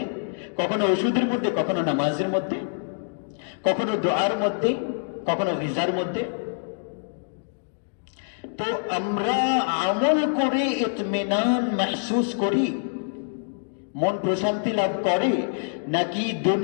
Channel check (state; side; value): silent; right; digital silence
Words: কখনো ওষুধের মধ্যে, কখনো নামাজের মধ্যে, কখনো দোয়ার মধ্যে, কখনো গিজার মধ্যে। তো আমরা আমল করে ইতমিনান মাহসুস করি, মন প্রশান্তি লাভ করে, নাকি